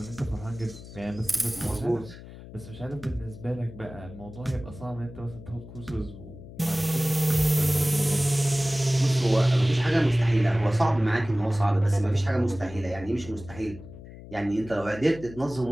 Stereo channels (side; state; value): left; noise; hum, 16 dB below the sound